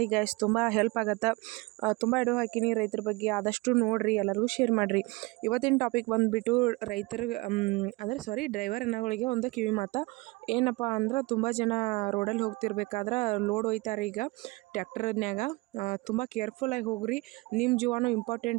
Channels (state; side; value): quieter; left; 24.0 dB